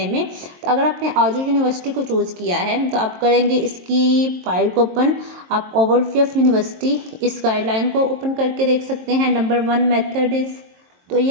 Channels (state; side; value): late; left; 22 ms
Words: में। तो अगर आपने आजू यूनिवर्सिटी को चूज़ किया है तो आप करेंगे इसकी फाइल को ओपन, आप ओवरव्यू ऑफ यूनिवर्सिटी इस गाइडलाइन को ओपन करके देख सकते हैं। नंबर 1 मेथड इज़, तो